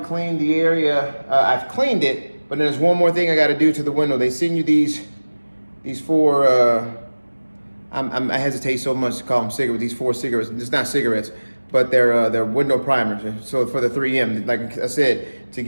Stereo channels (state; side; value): inverted; both; correlation -1.00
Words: the area. I've cleaned it, but then there's one more thing I got to do to the window. They send you these four. I hesitate so much to call them cigarettes. These 4 cigarettes. It's not cigarettes, but they're window primers. So for the 3M, like I said, to